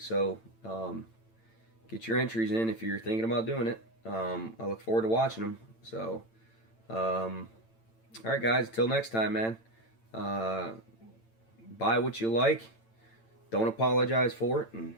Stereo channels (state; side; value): late; right; 8.9 ms